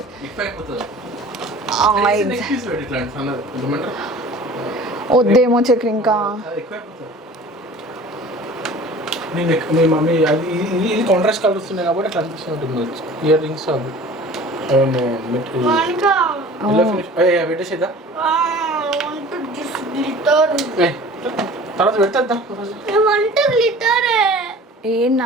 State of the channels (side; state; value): both; normal; correlation 0.44